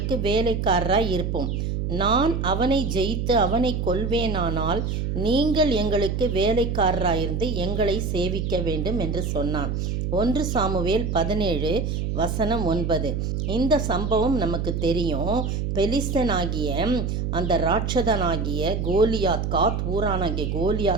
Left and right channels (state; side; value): noise; right; hum, 1 dB below the sound